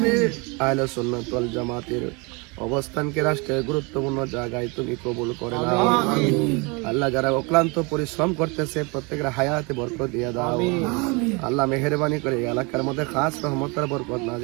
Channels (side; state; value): left; quieter; 29.3 dB